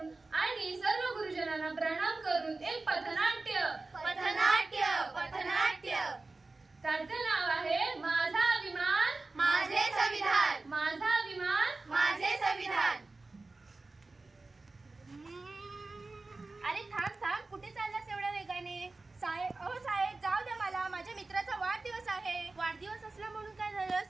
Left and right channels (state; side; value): quieter; left; 3.4 dB